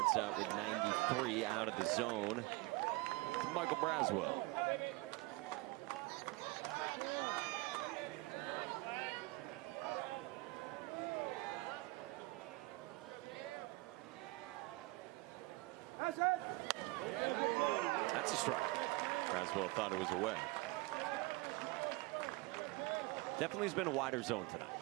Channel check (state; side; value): quieter; left; 22.6 dB